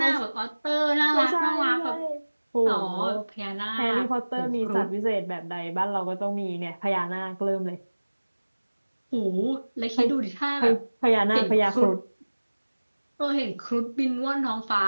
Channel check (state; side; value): inverted; both; correlation -1.00